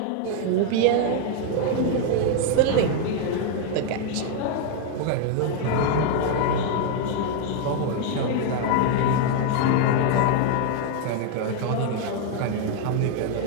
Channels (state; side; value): different; both; correlation 0.00